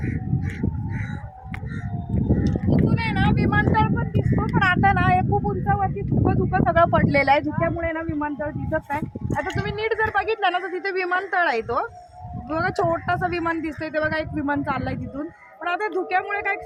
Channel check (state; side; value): identical; both; correlation 1.00